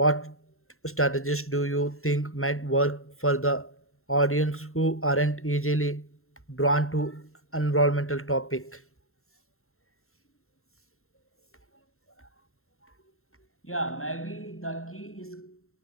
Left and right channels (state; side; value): late; right; 0.62 ms